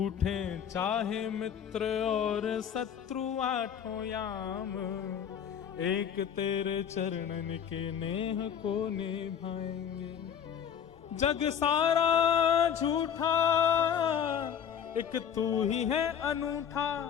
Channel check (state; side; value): quieter; right; 8.4 dB